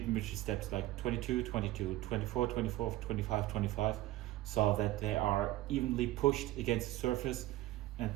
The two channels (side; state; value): left; quieter; 16.3 dB